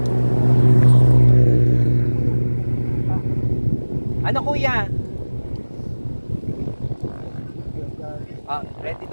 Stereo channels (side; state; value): both; inverted; correlation -1.00